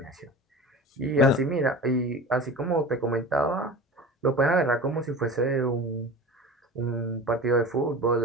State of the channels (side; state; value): both; normal; correlation 0.34